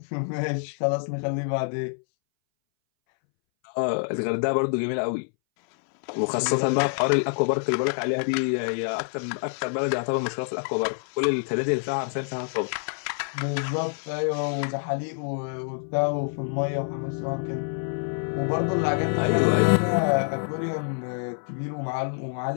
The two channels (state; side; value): silent; right; 61 dB below the other